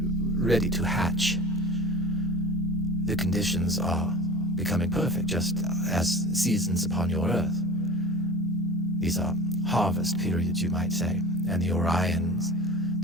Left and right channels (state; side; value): normal; both; correlation 0.38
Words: to hatch. The conditions are becoming perfect, just as seasons upon your Earth. These are harvest periods, you might say, and the Orions